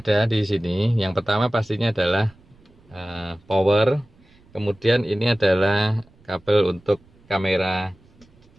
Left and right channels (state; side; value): noise; right; rumble, 29 dB below the sound